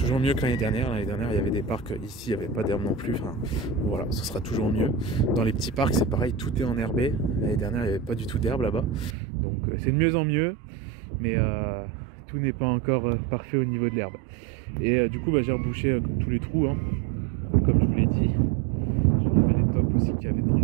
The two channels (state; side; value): drops out; left; at 9.2 s